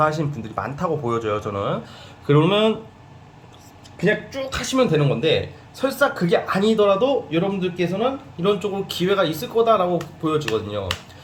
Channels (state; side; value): identical; both; correlation 1.00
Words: 분들이 많다고 보여져요 저는. 그러면 그냥 쭉 하시면 되는 건데, 설사 그게 아니더라도 여러분들께서는 이런 쪽으로 기회가 있을 거다라고 보여지거든요.